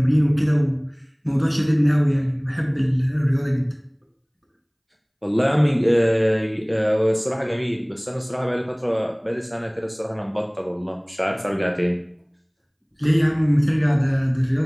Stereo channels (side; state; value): both; identical; correlation 1.00